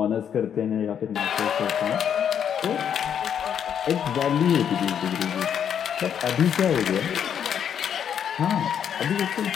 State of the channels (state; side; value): quieter; right; 8.6 dB